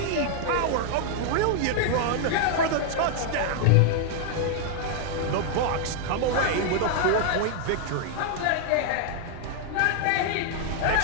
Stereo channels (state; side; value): different; both; correlation 0.00